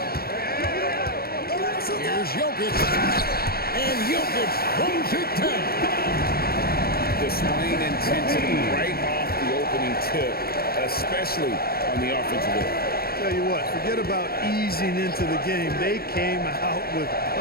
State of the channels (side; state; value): right; late; 0.44 ms